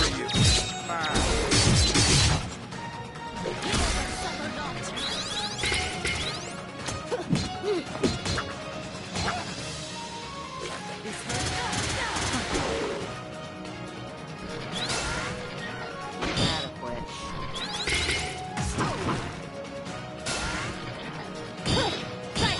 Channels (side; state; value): both; identical; correlation 1.00